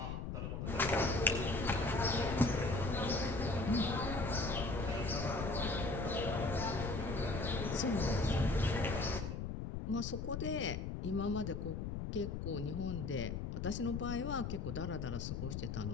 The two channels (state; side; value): noise; left; rumble, 4 dB below the sound